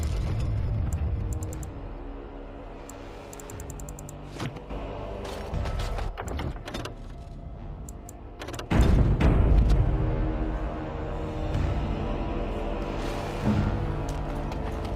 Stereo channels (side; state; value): both; identical; correlation 1.00